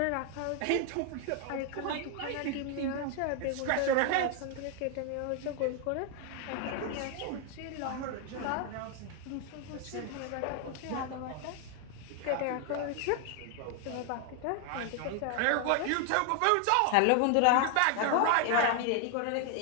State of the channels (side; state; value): both; different; correlation 0.00